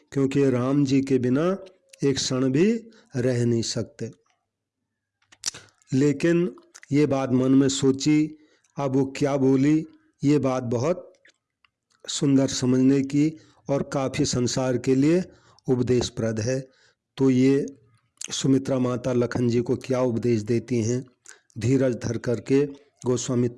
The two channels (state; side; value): identical; both; correlation 1.00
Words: राम जी के बिना एक क्षण भी रह नहीं सकते। लेकिन ये बात मन में सोची, अब वो क्या बोली, ये बात बहुत सुंदर समझने की और काफ़ी संसार के लिए उपदेशप्रद है। तो ये सुमित्रा माता लखन जी को क्या उपदेश देती हैं, धीरज धर करके गोस्वामी